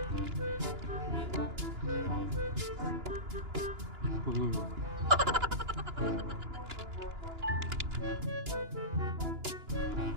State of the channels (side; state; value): left; late; 2.9 ms